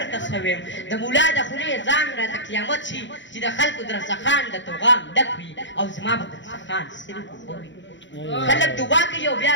ښه ویم د ملا د خولې ځان راته قیامت شي چې د خلکو درڅخان د توغام ډک وي او زما به درڅخان صرف اوبه وي خلک دعا کوي او بیا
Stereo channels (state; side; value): late; right; 0.54 ms